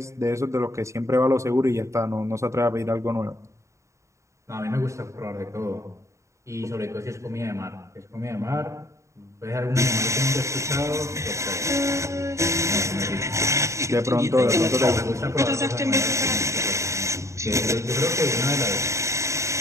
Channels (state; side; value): late; left; 0.14 ms